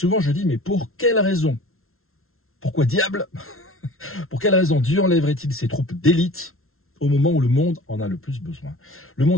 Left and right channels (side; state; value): right; late; 0.62 ms